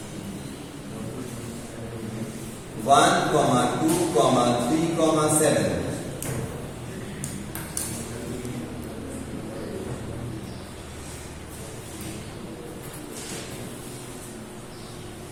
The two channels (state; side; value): identical; both; correlation 1.00